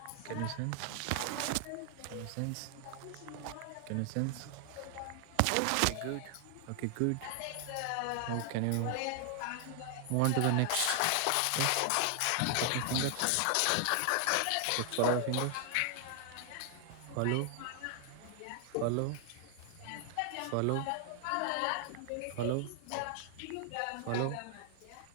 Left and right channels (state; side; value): different; both; correlation 0.00